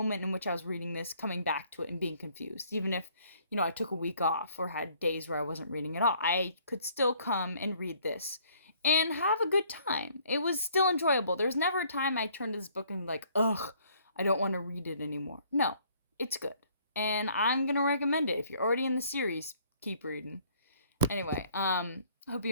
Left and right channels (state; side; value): inverted; both; correlation -0.61